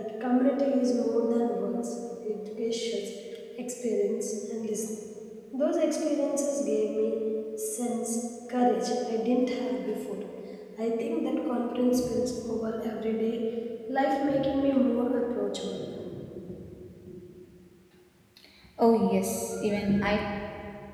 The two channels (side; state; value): both; identical; correlation 1.00